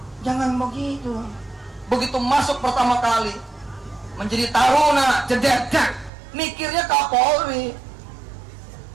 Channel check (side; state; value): left; drops out; at 6.1 s